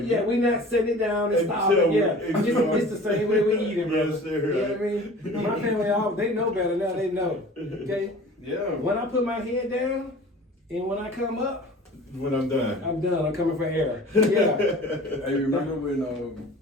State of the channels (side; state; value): both; normal; correlation 0.43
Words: Yeah, we're not setting it down and stopping. Until- Yeah, until- it's the same way we eat it, brother. Yes, sir. You know what I mean? My family, they know better now. They know. Okay. Yeah. When I put my head down and when I come up, When I'm done. I'm done. I'm coming for air. Yeah. Hey, remember when